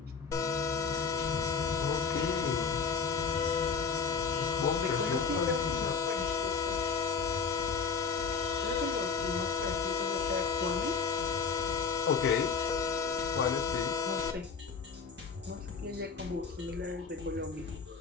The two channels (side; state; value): right; quieter; 5.4 dB